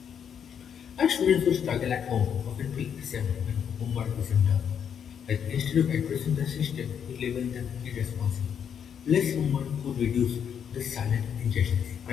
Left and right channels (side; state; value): right; quieter; 8.0 dB